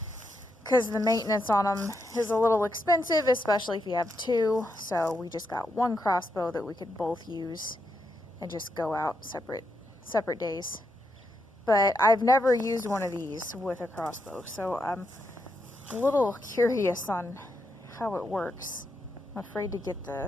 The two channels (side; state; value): both; normal; correlation 0.82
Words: because the maintenance on them is a little expensive, especially if you have 2. So we just got 1 Crossbow that we could both use and just go out separate days. But I've never used one of these with a Crossbow, so I'm a little curious on how it works. I'm afraid to get